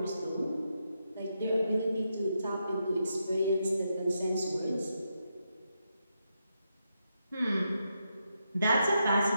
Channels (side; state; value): both; inverted; correlation -0.83